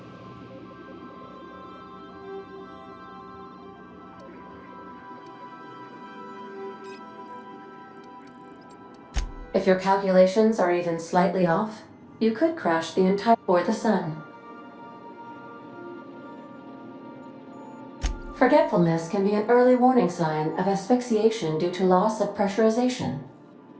If your calculations are even slightly off, you could crash the entire or the sun. Forgetfulness can be an early warning sign of asphyxiation due to loss of pressurization.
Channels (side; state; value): both; identical; correlation 1.00